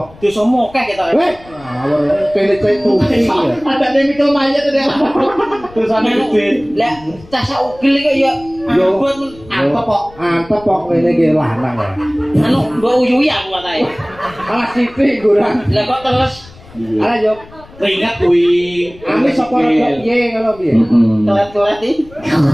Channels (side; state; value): left; noise; rumble, 22 dB below the sound